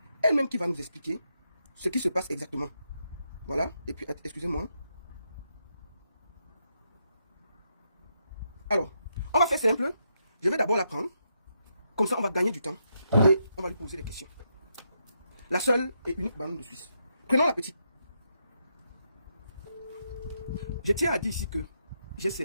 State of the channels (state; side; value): inverted; both; correlation -0.80